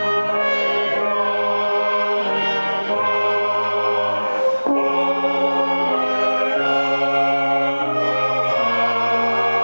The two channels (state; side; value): inverted; both; correlation -1.00